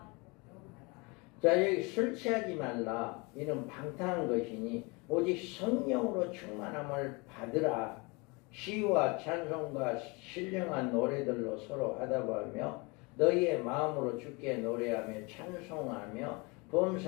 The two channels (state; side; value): quieter; right; 28.0 dB